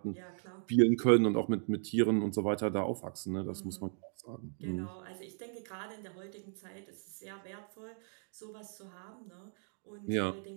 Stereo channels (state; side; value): silent; left; 54 dB below the other